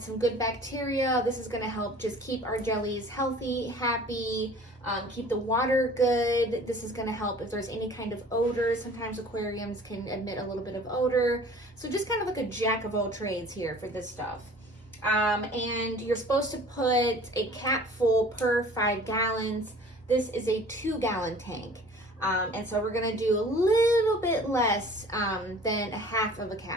some good bacteria. This is gonna help just keep our jellies healthy, happy, keep the water good. This is gonna help if there's any kind of odor. Sometimes aquariums can emit a little bit of odor. So just kind of like a jack of all trades here for this stuff. And you're supposed to put a cap full per 5 gallons. This is a 2-gallon tank. And so we're gonna do a little bit less than a half of a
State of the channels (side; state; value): both; normal; correlation 0.47